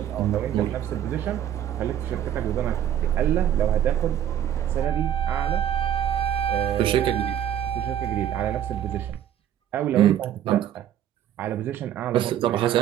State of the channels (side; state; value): left; quieter; 10.6 dB